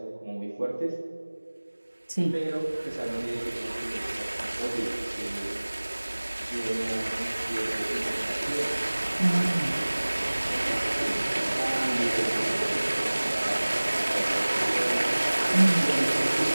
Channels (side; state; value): both; inverted; correlation -1.00